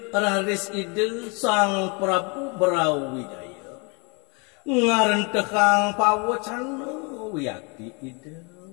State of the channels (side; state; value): right; quieter; 32.2 dB